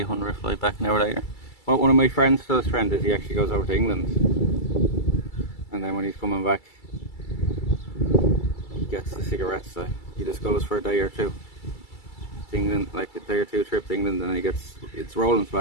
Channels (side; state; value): right; late; 2.3 ms